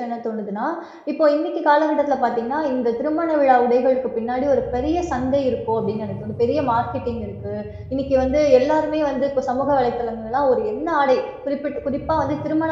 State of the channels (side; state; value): both; identical; correlation 1.00